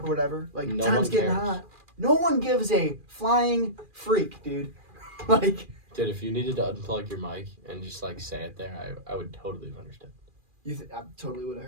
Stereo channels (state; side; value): late; left; 2.4 ms